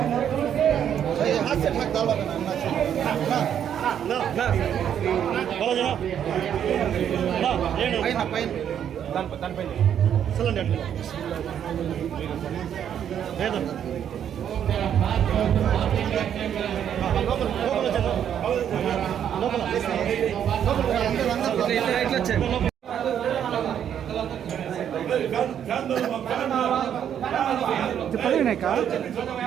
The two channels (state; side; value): quieter; left; 9.3 dB